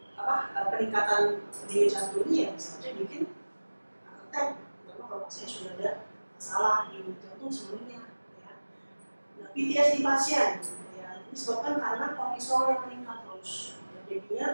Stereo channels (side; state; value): both; inverted; correlation -1.00